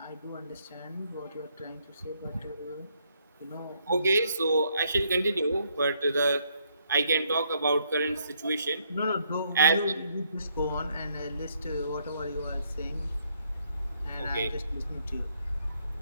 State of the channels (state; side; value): inverted; both; correlation -0.72